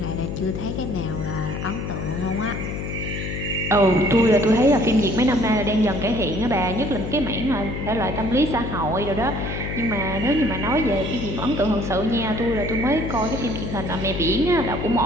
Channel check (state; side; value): noise; left; hum, 5 dB below the sound